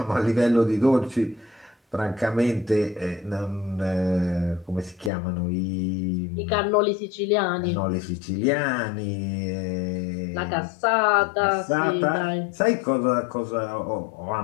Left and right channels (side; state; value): right; drops out; at 5.1 s